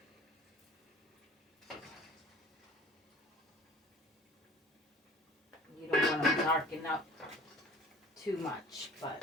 You don't want to darken up too much, but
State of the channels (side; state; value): both; normal; correlation 0.48